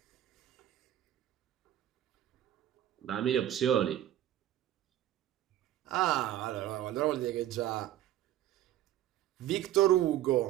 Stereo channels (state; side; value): quieter; left; 12.5 dB